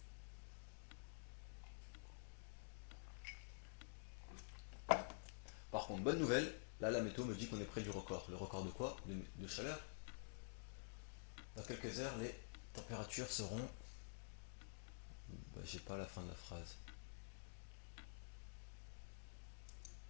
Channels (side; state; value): right; silent; digital silence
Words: Par contre, bonne nouvelle, là la météo me dit qu'on est près du record. Le record de quoi? De chaleur. Dans quelques heures, les températures seront... j'ai pas la fin de la phrase.